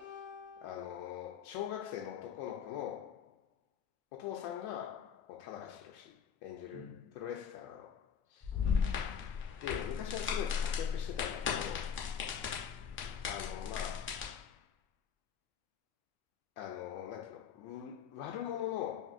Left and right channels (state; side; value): quieter; right; 7.5 dB